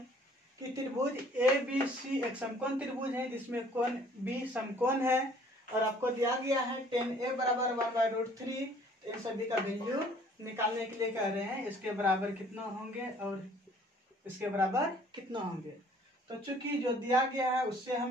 कि त्रिभुज ABC एक समकोण त्रिभुज है जिसमें कोण B समकोण है और आपको दिया गया है tan A बराबर 1/√3। इन सभी का वैल्यू निकालने के लिए कह रहे हैं इसके बराबर कितना होंगे और इसके बराबर कितना होंगे। तो चूंकि जो दिया गया है उससे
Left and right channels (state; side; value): normal; both; correlation 0.56